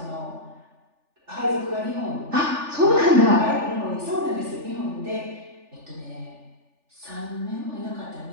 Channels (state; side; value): late; left; 3.4 ms